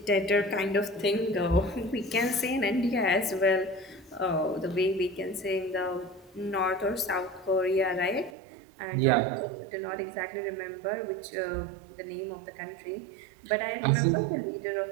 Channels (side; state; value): left; drops out; at 8.3 s